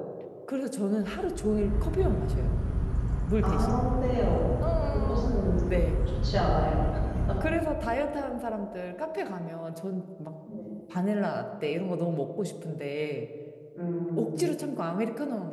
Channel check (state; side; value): identical; both; correlation 1.00